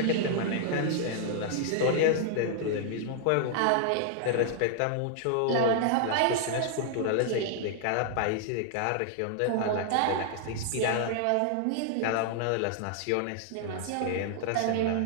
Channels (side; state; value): both; different; correlation -0.01